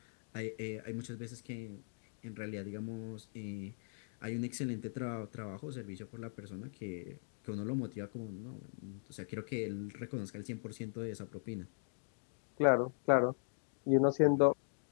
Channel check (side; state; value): right; silent; digital silence